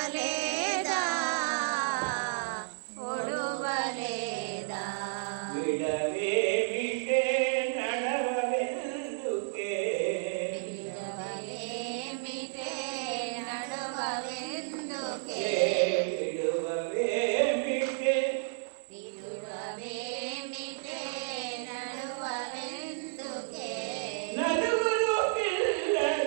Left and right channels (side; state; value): left; silent; 56 dB below the other